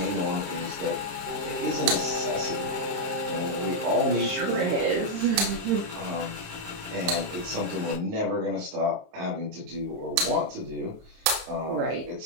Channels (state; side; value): late; left; 28 ms